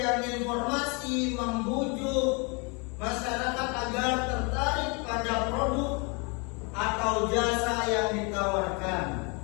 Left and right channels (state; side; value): quieter; right; 31.8 dB